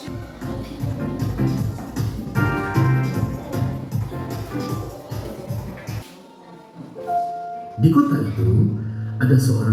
Di kota itu ada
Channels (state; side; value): identical; both; correlation 1.00